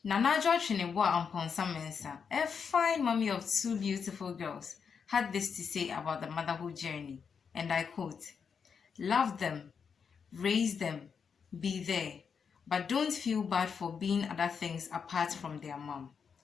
Nanajo Chinibwa Amponsa Mensa, a fine mommy of two beautiful girls, had this to say about the motherhood journey, and I quote, "Love them, raise them, be there, but don't feel bad for being other things apart from their mom."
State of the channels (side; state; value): right; quieter; 6.3 dB